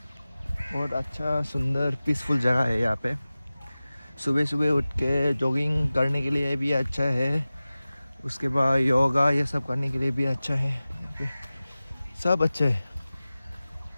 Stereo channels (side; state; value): both; inverted; correlation -0.97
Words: बहुत अच्छा सुंदर पीसफुल जगह है यहाँ पे सुबह सुबह उठ के जॉगिंग करने के लिए भी अच्छा है उसके बाद योगा ये सब करने के लिए भी अच्छा है यहाँ पे सब अच्छा है